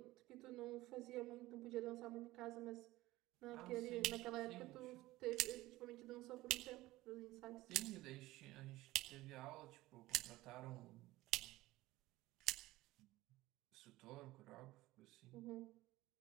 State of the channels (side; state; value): left; quieter; 17.9 dB